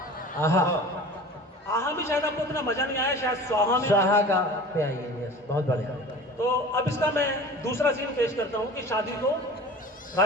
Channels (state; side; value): normal; both; correlation 0.40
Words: आहा। आहा भी शायद आपको इतना मजा नहीं आया, शायद स्वाहा में। स्वाहा का पे आइए, यस, बहुत बढ़िया। तो अब इसका मैं दूसरा सीन पेश करता हूँ कि शादी को,